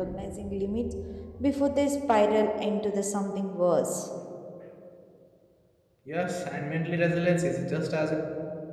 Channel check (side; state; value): both; identical; correlation 1.00